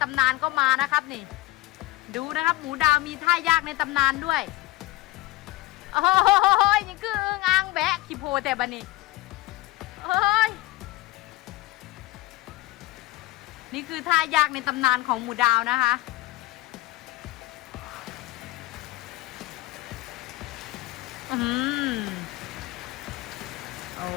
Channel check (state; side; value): quieter; right; 18.2 dB